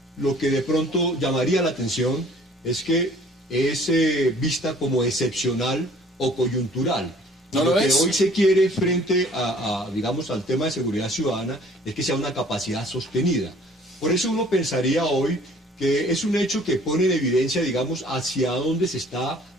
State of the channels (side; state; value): both; normal; correlation 0.54